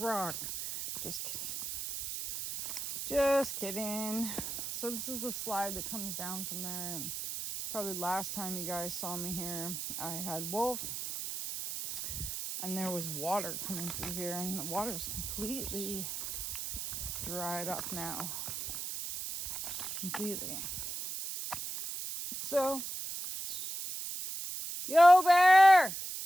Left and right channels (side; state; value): right; noise; hiss, 5 dB below the sound